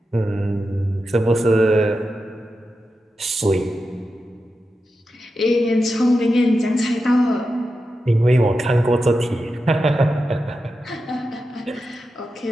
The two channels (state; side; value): normal; both; correlation 0.90